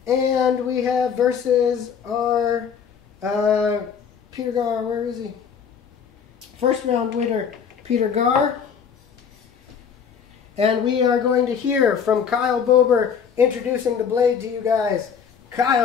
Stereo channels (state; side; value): quieter; right; 7.0 dB